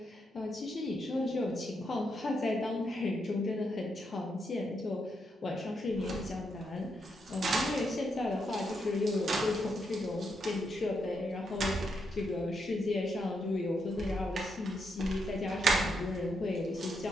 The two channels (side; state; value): both; normal; correlation 0.80